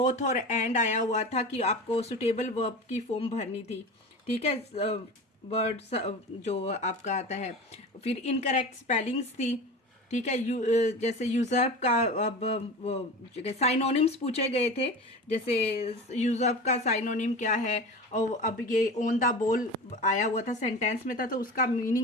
और एंड आया हुआ था कि आपको सुटेबल वर्ब की फॉर्म भरनी थी। ठीक है, वर्ड्स जो आपका आता है। फिर इनकरेक्ट स्पेलिंग्स थी, ठीक है, जैसे यूजर्ब का, अब वो साइनोनिम्स पूछे गए थे, जैसे यूजर्ब का साइनोनिम क्या है, और अब ये ऑन द बॉल आया हुआ था, सेंटेंस में था, तो उसका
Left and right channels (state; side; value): normal; both; correlation 0.32